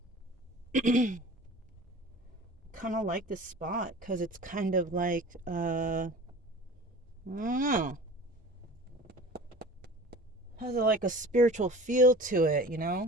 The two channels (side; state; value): both; normal; correlation 0.40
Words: Kind of like this spot because it's kind of like, I don't know. Has like a spiritual feel to it, you